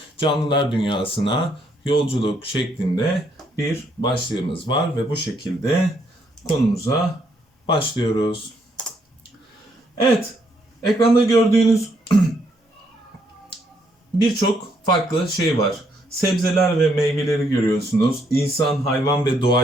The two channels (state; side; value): normal; both; correlation 0.72